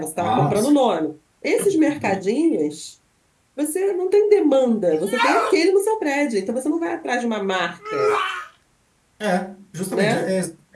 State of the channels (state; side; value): identical; both; correlation 1.00